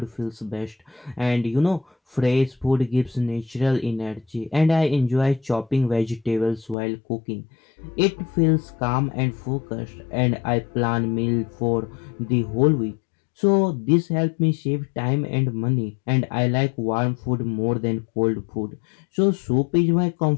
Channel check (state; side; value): drops out; right; at 6.8 s